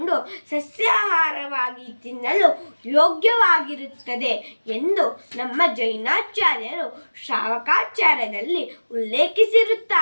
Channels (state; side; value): inverted; both; correlation -1.00